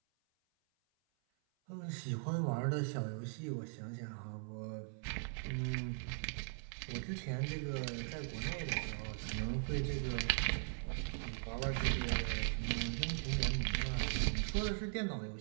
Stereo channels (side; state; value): left; silent; 51 dB below the other